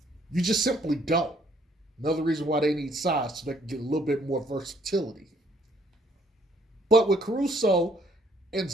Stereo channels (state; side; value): normal; both; correlation 0.66